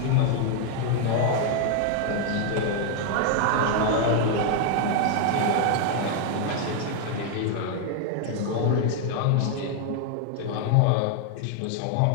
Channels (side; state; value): both; different; correlation 0.00